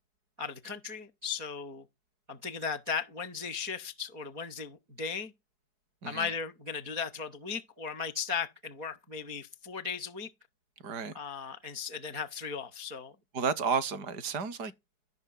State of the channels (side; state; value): left; late; 4.7 ms